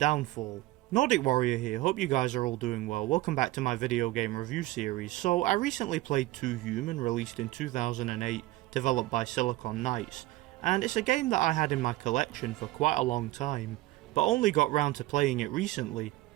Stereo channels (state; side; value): quieter; left; 18.0 dB